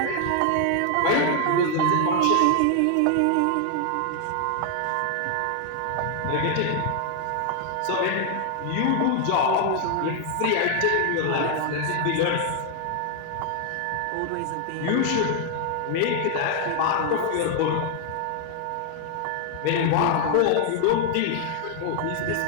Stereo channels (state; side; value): different; both; correlation 0.00